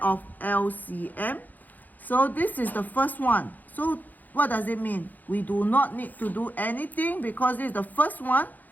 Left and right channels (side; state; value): right; late; 0.084 ms